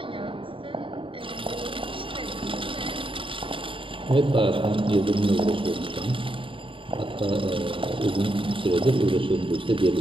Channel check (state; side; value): late; left; 0.25 ms